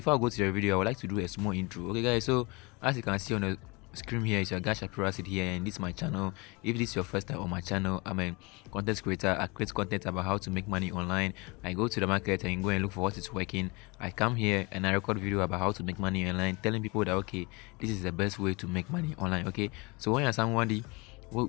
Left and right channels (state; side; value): quieter; right; 26.8 dB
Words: I go to the video, I would like to do a small intro. Okay guys, so as you can see on the screen here, it's your guy Shapiro Acid here, and this is my channel. If this is your first time on my channel, I'm a content creator. I create content about how to make money online. I go to the market and go and look for what is working. I come here and I record video about how to make money online, telling people that okay, this is the best way to make money online. Okay, so when you're somebody